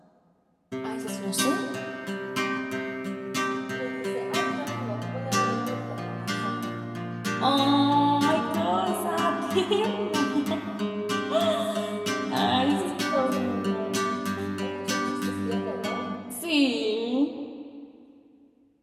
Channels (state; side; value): identical; both; correlation 1.00